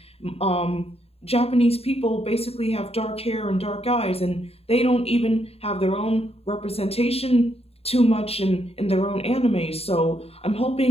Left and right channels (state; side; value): late; right; 0.29 ms